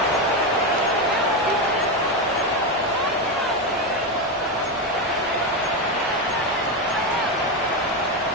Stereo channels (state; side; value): normal; both; correlation 0.11